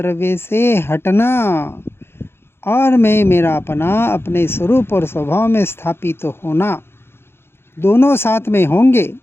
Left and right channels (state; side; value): late; right; 0.11 ms